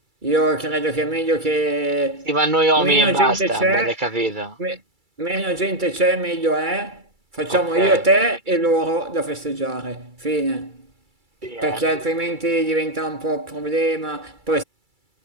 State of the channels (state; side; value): late; left; 2.3 ms